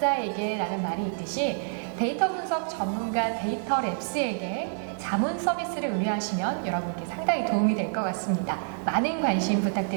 라는 말이 있듯이 데이터 분석 전문가 데이터랩스에게 자문 서비스를 의뢰하시면 여러분께 상당히 도움이 될 것 같습니다. 많은 관심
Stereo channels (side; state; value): left; silent; 56 dB below the other